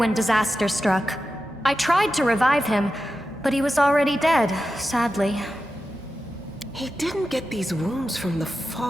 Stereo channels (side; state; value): both; normal; correlation 0.91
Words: disaster struck. I tried to revive him, but he was already dead, sadly. He didn't get these wounds from the